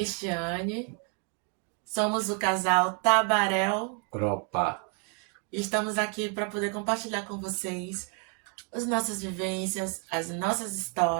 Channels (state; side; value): quieter; left; 38.7 dB